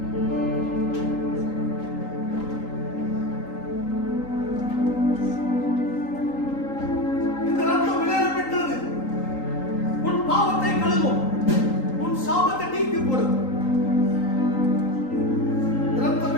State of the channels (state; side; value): late; right; 3.8 ms